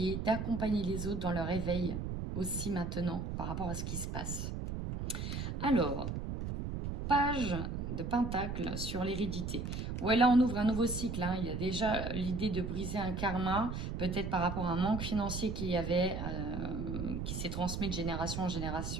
d'accompagner les autres dans leur éveil aussi maintenant par rapport à ce qui se passe. Alors, page de Pentacle sur l'hérédité. Ouais, là on ouvre un nouveau cycle. Hein. Il y a déjà l'idée de briser un karma, peut-être par rapport à un manque financier qu'il y avait, qui s'est transmis de génération en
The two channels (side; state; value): right; noise; rumble, 4 dB below the sound